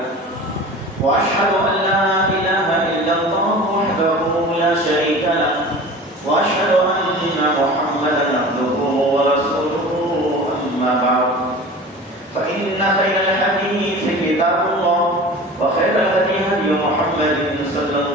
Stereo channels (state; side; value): normal; both; correlation 0.38